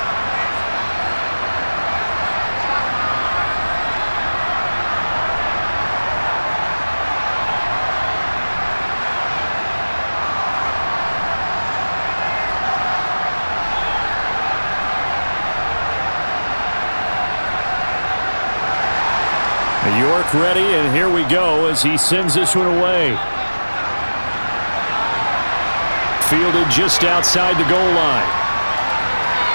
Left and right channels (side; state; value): both; inverted; correlation -1.00